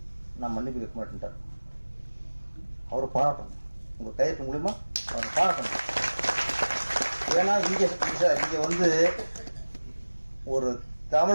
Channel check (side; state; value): both; inverted; correlation -1.00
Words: நான் மன்னிப்பு கேட்க மாட்டேன்ட்டார். அவரை பாராட்டணும், உங்க கையெழுத்து மூலியமா அவரை பாராட்டணும். ஏன்னா இங்க வந்து ஒரு